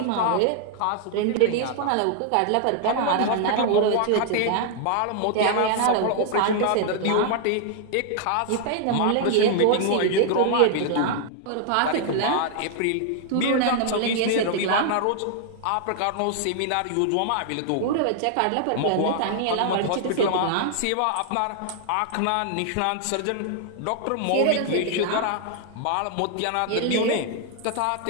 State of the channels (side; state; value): both; different; correlation 0.00